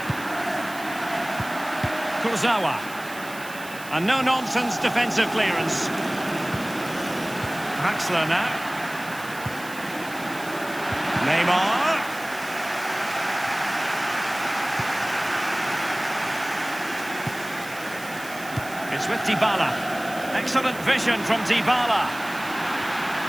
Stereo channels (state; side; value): noise; right; hiss, 16 dB below the sound